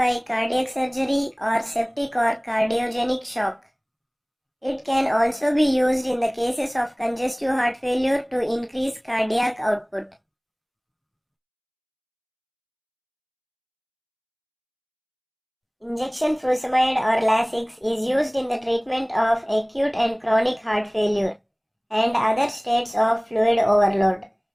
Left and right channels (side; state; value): both; identical; correlation 1.00